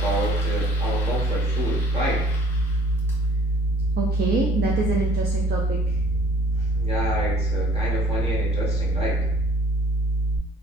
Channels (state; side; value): normal; both; correlation 0.55